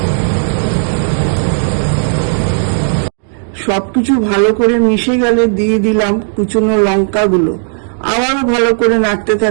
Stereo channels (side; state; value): left; silent; digital silence